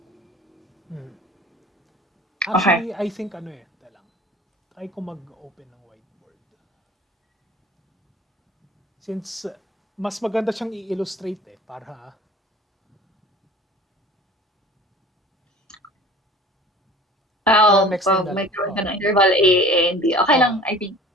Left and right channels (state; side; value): normal; both; correlation 0.44